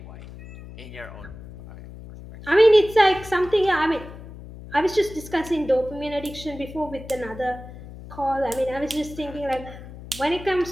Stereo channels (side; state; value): left; noise; hum, 15 dB below the sound